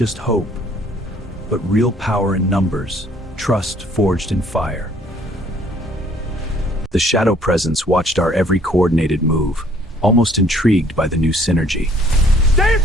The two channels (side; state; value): both; normal; correlation 0.60